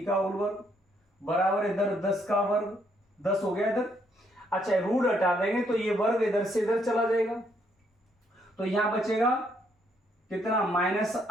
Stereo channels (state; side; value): normal; both; correlation 0.72